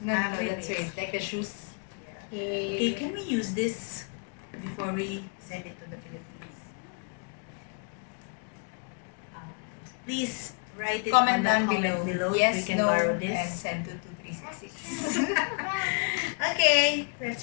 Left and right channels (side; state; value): right; quieter; 39.6 dB